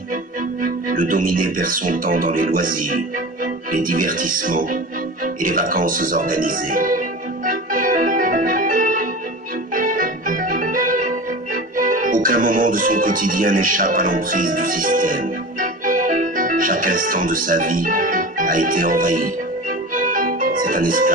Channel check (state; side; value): normal; both; correlation 0.32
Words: le dominé perd son temps dans les loisirs, les divertissements et les vacances organisées. Aucun moment de son quotidien n'échappe à l'emprise du système. Chaque instant de sa vie a été envahi. C'est un